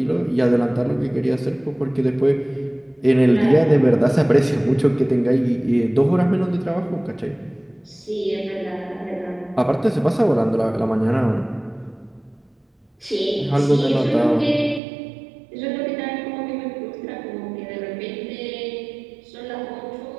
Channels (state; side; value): drops out; left; at 14.8 s